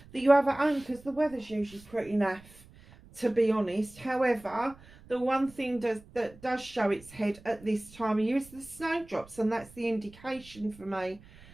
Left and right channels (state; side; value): noise; right; rumble, 22 dB below the sound